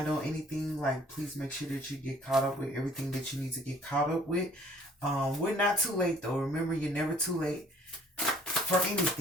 on anything, like, please make sure that you get caught up with everything that you need to get caught up with. We're not too late, though. Remember, you're never too late for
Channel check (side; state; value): both; normal; correlation 0.56